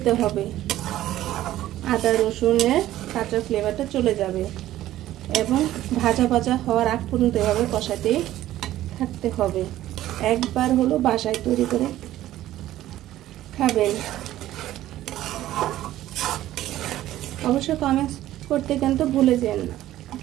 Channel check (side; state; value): left; quieter; 14.0 dB